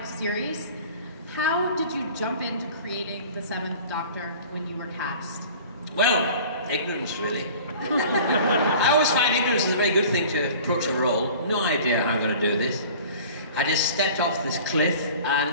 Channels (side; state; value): both; inverted; correlation -0.44